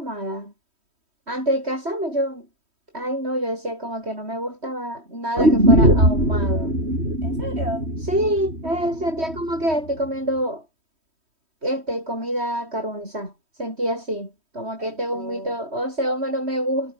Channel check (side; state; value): left; late; 3.1 ms